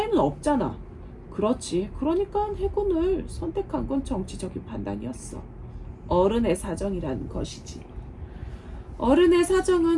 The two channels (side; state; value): both; identical; correlation 1.00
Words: 없잖아. 그렇지. 그러니까 해군을 선택한 건 정치적인 판단이었어. 어른의 사정이란 것이지. 어른의